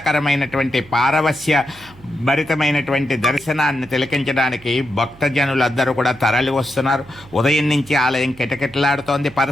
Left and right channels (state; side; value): noise; right; hum, 23 dB below the sound